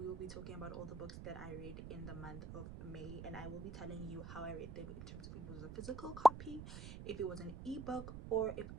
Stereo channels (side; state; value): right; noise; rumble, 9 dB below the sound